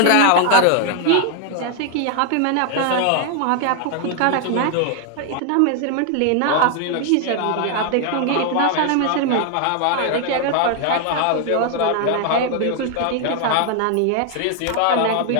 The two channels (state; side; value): different; both; correlation 0.00